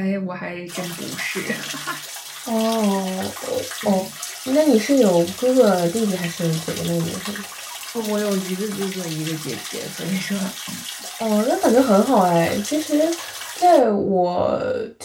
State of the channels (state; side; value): identical; both; correlation 1.00